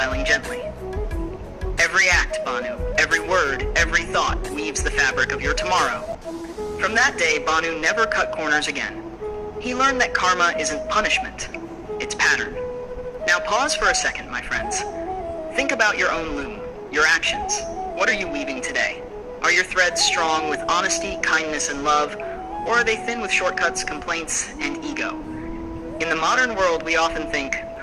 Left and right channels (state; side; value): identical; both; correlation 1.00